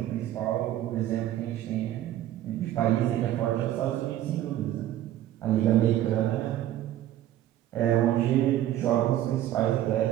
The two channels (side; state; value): left; quieter; 12.9 dB